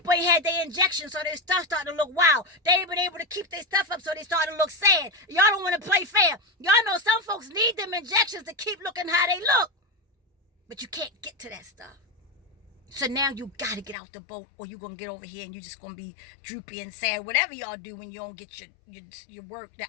ain't had their injections, so their stuff starting to look wild. They ain't been able to keep their stuff up, so they starting to look sad. Y'all don't want to play fair. Y'all know some folks need them injections to keep looking how they look, but you can't get to that stuff. So now you got to get out the boat, or you're gonna get over here and you're just gonna be droopy and sad, whatever y'all do when you don't get your work.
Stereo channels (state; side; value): drops out; right; at 14.0 s